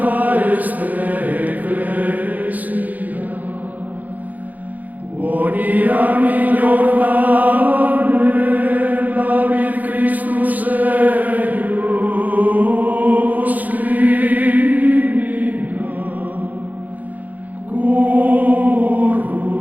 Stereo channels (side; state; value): left; late; 0.080 ms